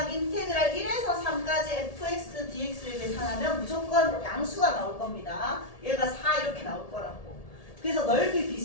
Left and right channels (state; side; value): late; right; 1.7 ms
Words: 인테그랄 1에서 3까지 fx dx를 계산하면 무조건 양수가 나올 겁니다. 얘가 4 이렇게 나올 거라고. 그래서 넓이